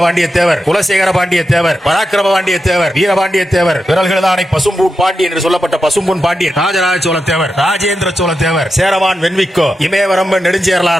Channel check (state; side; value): normal; both; correlation 0.88